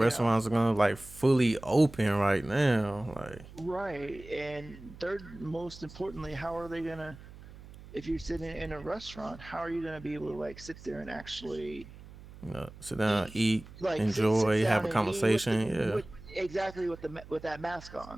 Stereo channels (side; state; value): right; noise; hum, 18 dB below the sound